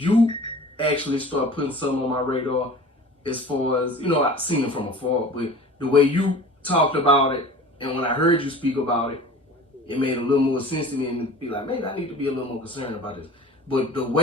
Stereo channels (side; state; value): both; normal; correlation 0.41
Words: actually start putting something on my radar as far as, I've seen it from afar, but the way you talked about it and when I heard you speak about it, it made a little more sense to me and be like, maybe I need to be a little more concerned about this. But the